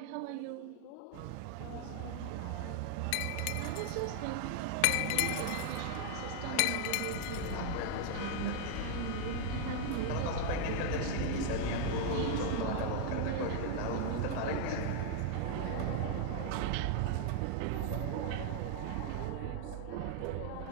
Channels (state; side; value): different; both; correlation 0.00